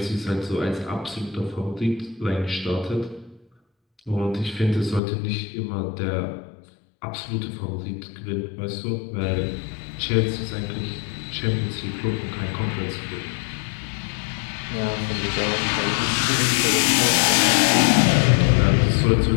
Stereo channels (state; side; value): drops out; right; at 5.0 s